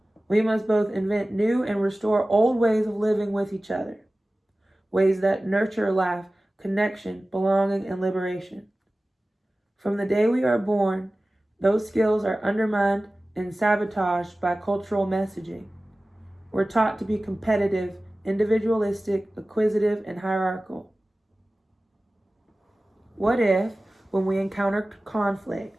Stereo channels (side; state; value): both; normal; correlation 0.97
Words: We must both invent new and restore old ways of living with each other, ways that nurture life, connection, belonging, and liberation. From the day we are born, those skills are undermined and sabotaged by cultural messaging. We're taught to be competitive, individualistic, acquisitive, and hierarchical. What if, when we encountered